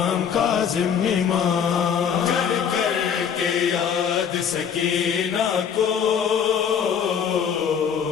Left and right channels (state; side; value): quieter; right; 7.6 dB